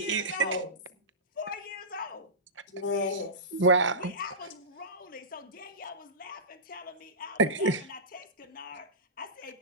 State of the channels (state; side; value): normal; both; correlation -0.19